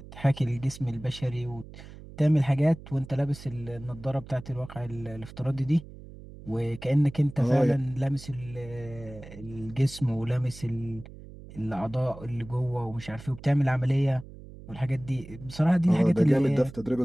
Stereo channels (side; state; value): right; noise; hum, 16 dB below the sound